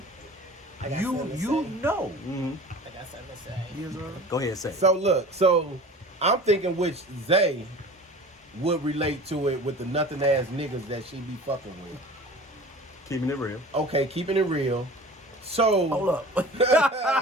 I got you something to you say. know. I got something to say. Yes, sir. Go ahead, say. So look, I'm thinking which Zay would relate to it with the nothing ass niggas that she be fucking with. Keeping it real. Okay, keeping it real. So Hold up.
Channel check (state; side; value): normal; both; correlation 0.40